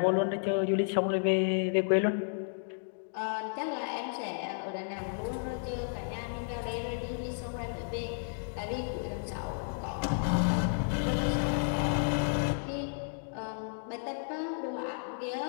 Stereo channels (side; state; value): right; silent; digital silence